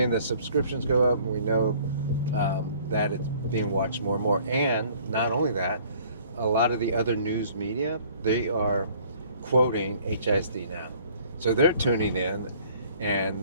the subscriptions go up, and we know that it's being watched more and more. And not only that, a lot of the other news media, they are quoting HISD now. So they're tuning in,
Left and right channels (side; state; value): both; inverted; correlation -0.56